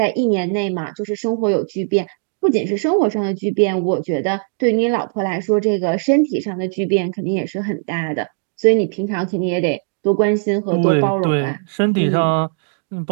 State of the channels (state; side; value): silent; left; digital silence